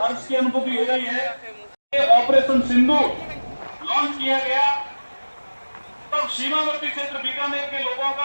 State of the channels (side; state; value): both; inverted; correlation -1.00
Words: हर्ष की अनुभूति हो रही है। ऑपरेशन सिंधु लॉन्च किया गया, तब सीमावर्ती क्षेत्र बीकानेर के लोगों